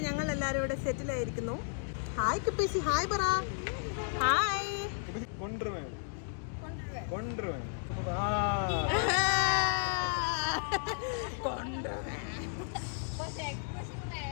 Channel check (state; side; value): silent; right; digital silence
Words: ഞങ്ങൾ എല്ലാവരും ഇവിടെ സെറ്റിൽ ആയിരിക്കുന്നു. ഹായ് കിപ്പീസി, ഹായ് പറ. Hi. കൊണ്ടുവരുവേൻ കൊണ്ടുവരുവേൻ